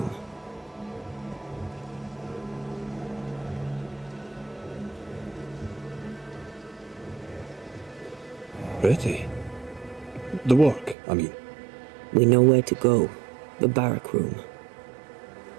Pretty. The work, I mean. We know where to go. The barrack room.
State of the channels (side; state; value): left; drops out; at 11.0 s